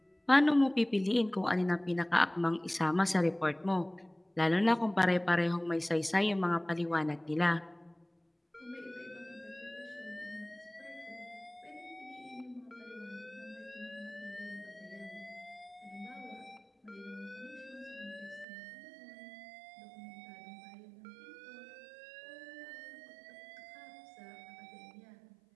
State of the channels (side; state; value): left; drops out; at 18.4 s